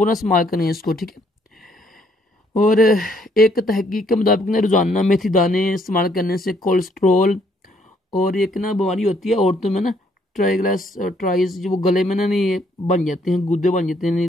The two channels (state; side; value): normal; both; correlation 0.68